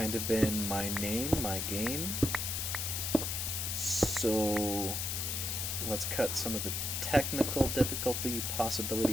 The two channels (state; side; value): noise; left; hiss, 1 dB below the sound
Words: of been my game. So let's cut some of the technical difficulty